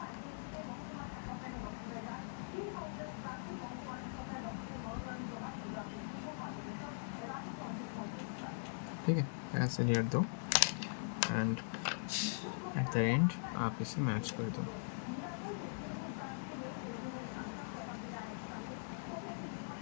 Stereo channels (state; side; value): silent; right; digital silence